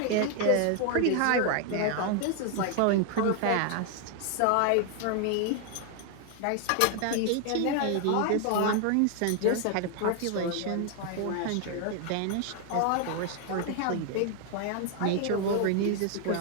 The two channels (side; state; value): both; different; correlation 0.00